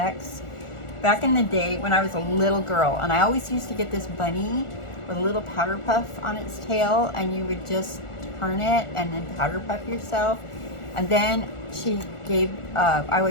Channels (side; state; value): right; late; 1.4 ms